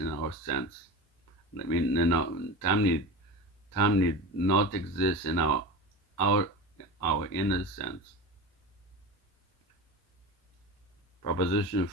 our sense. Time need not exist in our inner sense. Proposition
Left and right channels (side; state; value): right; late; 1.3 ms